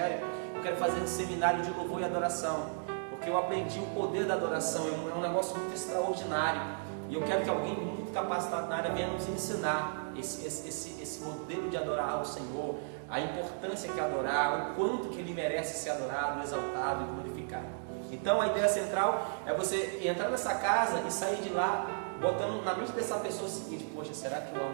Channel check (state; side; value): silent; left; digital silence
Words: Eu quero fazer esse seminário de louvor e adoração, porque eu aprendi o poder da adoração, é um negócio muito extraordinário, e eu quero que alguém muito capacitado na área venha nos ensinar esse modelo de adorar ao Senhor, a importância que é adorar, o quanto que Ele merece ser adorado, exaltado e glorificado. Então a ideia central é você entrar nessa casa e sair de lá botando na mente dessa pessoa o seguinte, poxa, será que eu